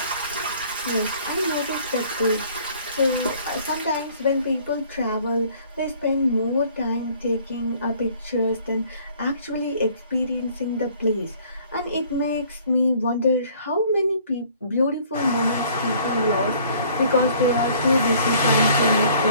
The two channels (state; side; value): inverted; both; correlation -0.56